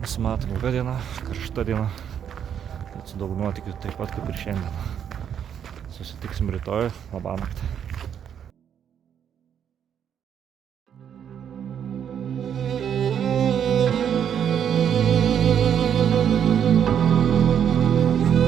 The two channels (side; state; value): left; quieter; 8.7 dB